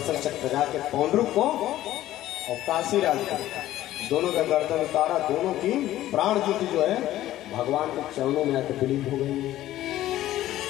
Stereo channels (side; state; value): right; quieter; 14.1 dB